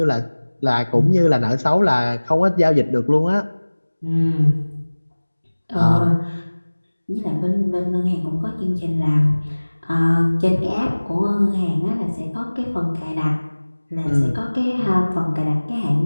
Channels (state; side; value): inverted; both; correlation -1.00